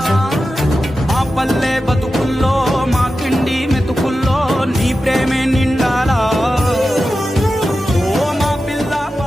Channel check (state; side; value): normal; both; correlation 0.92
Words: మా పల్లె బతుకుల్లో మా కిండి మెతుకుల్లో నీ ప్రేమే నిండి